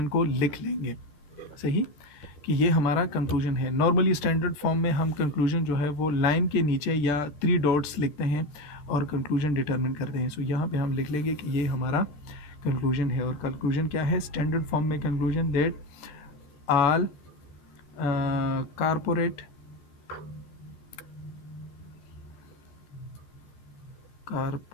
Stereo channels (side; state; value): right; late; 13 ms